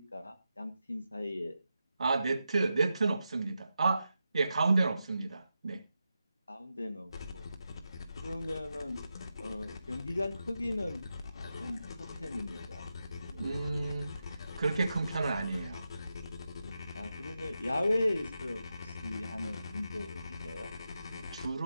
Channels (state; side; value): inverted; both; correlation -0.89